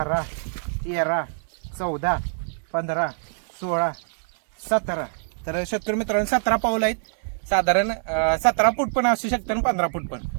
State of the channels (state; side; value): silent; left; 62 dB below the other